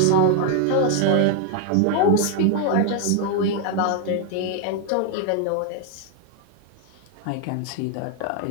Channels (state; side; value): different; both; correlation 0.00